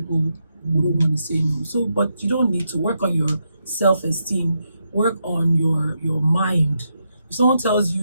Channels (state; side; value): inverted; both; correlation -0.82